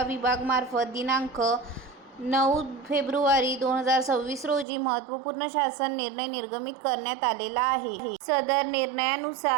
विभागामार्फत दिनांक 9 फेब्रुवारी 2026 रोजी महत्त्वपूर्ण शासन निर्णय निर्गमित करण्यात आलेला आहे. सदर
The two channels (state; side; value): drops out; left; at 4.7 s